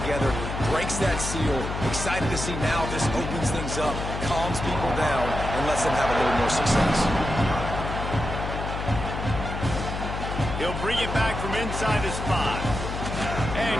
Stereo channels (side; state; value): left; noise; hum, 5 dB below the sound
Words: breaks that seal. Excited to see now this opens things up, calms people down, and lets them have a little more success. He'll bring it back from inside his 5. And